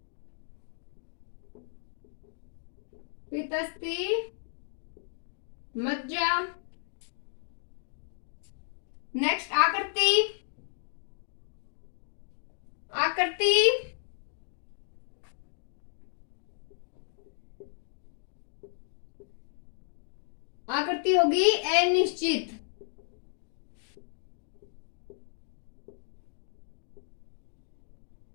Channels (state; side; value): silent; right; digital silence